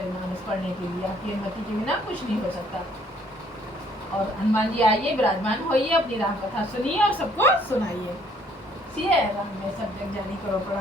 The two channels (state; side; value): normal; both; correlation 0.62